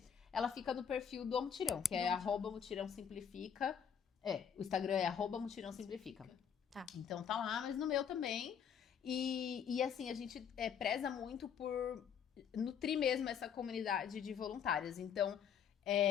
Ela fica no perfil do Mutirão, que é @mutirãosimplifica. O Instagram é @mutirãosimplifica. Tá. Então tá lá, mas no meu também. E assim, a gente preza muito por nutrir mesmo essa comunidade de voluntárias. Então,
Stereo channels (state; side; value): quieter; right; 7.8 dB